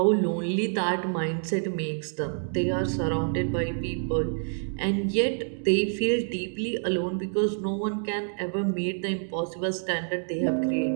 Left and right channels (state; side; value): silent; left; digital silence